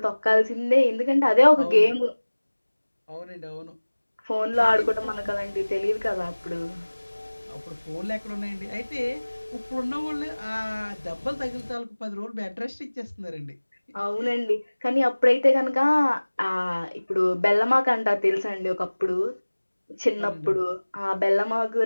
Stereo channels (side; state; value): both; inverted; correlation -1.00